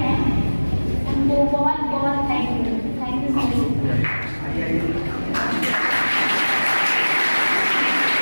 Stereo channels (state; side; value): inverted; both; correlation -1.00